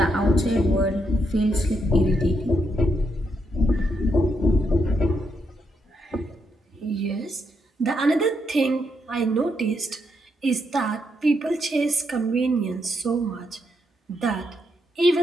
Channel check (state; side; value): normal; both; correlation 0.79